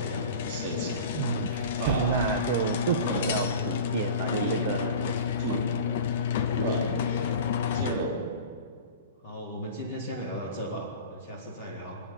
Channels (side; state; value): both; inverted; correlation -0.36